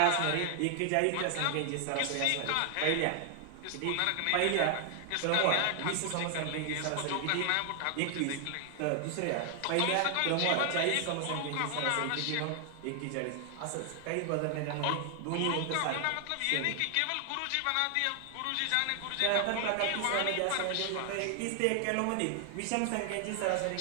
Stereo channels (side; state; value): both; different; correlation 0.00